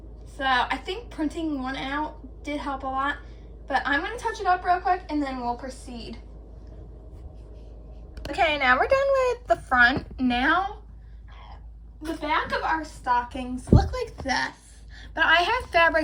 So I think printing one out did help a lot. But I'm going to touch it up real quick and then we'll proceed. Okay, now we're done with the front. Now, the back of our stockings look like this. But I have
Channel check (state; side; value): identical; both; correlation 1.00